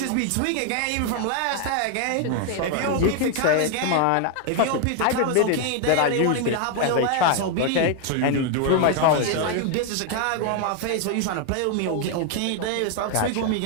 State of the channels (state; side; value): different; both; correlation 0.00